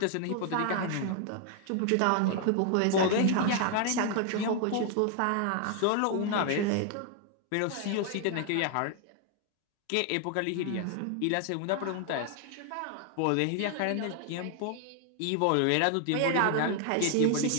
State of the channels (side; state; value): both; different; correlation 0.00